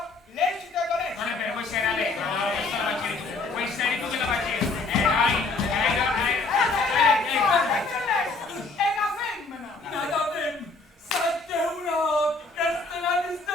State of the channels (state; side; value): quieter; right; 3.7 dB